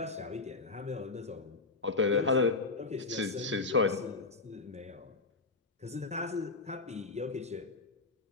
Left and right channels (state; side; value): quieter; right; 3.7 dB